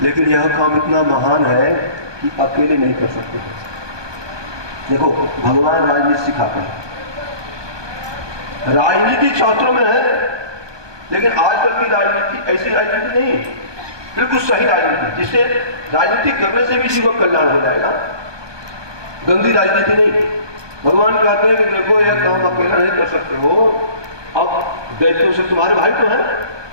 लेकिन यह काम इतना महान है कि अकेले नहीं कर सकते। देखो भगवान राजनीति सिखाते हैं, राजनीति शास्त्रों में है, लेकिन आजकल की राजनीति ऐसी राजनीति नहीं, बिल्कुल सही राजनीति जिससे राजनीति करने से भी जीवन कल्याण हो जाएगा, गंदी राजनीति नहीं। भगवान कहते हैं कि देखो यह काम अकेला नहीं कर सकते हो, अब दैत्यों से तुम्हारे भाई तो हैं,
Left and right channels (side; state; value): left; late; 1.2 ms